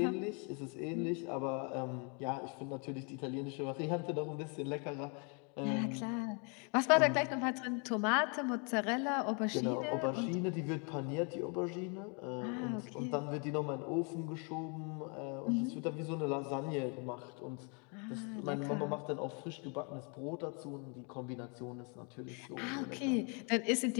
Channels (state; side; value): quieter; right; 35.8 dB